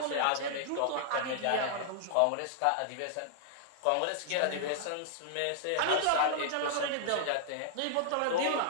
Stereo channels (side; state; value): both; different; correlation -0.01